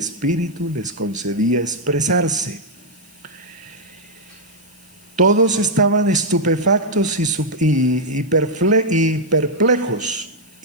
les concedía expresarse. Todos estaban estupefactos y perplejos,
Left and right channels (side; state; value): left; noise; hiss, 27 dB below the sound